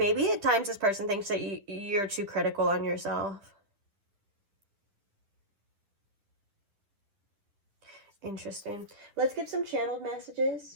at times this person thinks that you're too critical on yourself. Interesting. Let's get some channeled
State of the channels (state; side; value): late; left; 9.9 ms